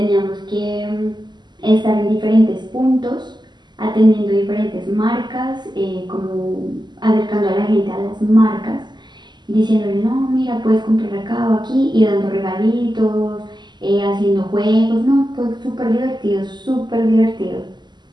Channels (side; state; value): left; late; 0.21 ms